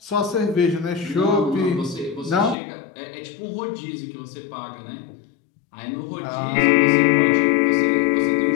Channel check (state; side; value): drops out; right; at 2.6 s